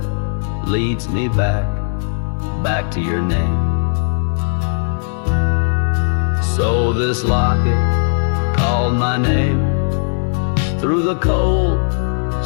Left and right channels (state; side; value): silent; right; 64 dB below the other